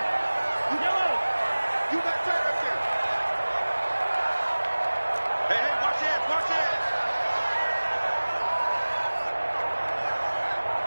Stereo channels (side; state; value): both; inverted; correlation -1.00